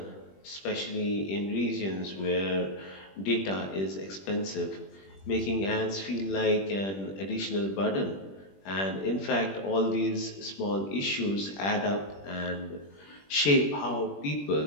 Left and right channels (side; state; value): right; late; 21 ms